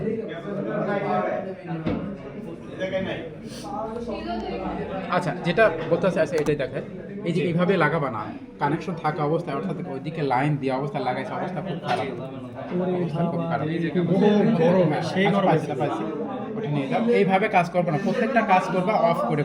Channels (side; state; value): both; identical; correlation 1.00